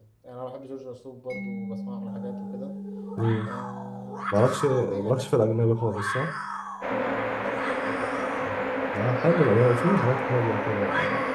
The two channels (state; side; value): identical; both; correlation 1.00